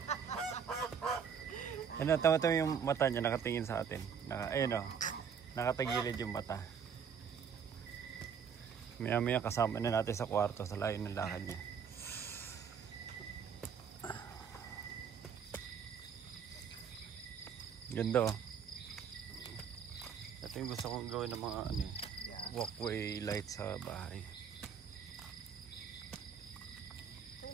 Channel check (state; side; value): quieter; left; 7.1 dB